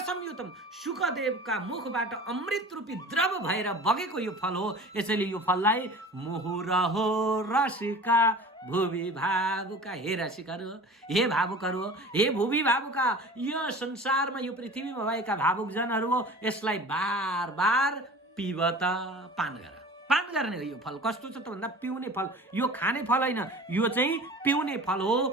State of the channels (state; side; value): normal; both; correlation 0.40